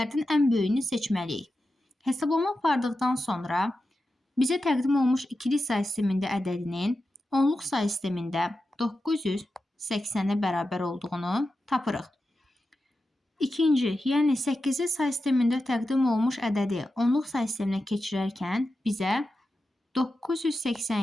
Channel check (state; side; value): normal; both; correlation 0.91